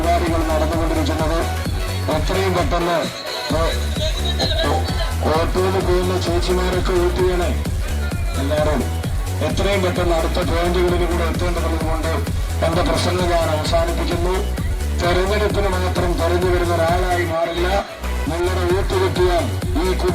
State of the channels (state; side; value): identical; both; correlation 1.00